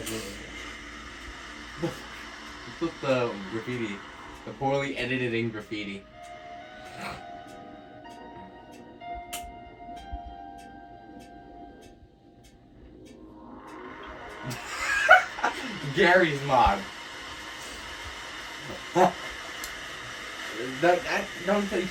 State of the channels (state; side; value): identical; both; correlation 1.00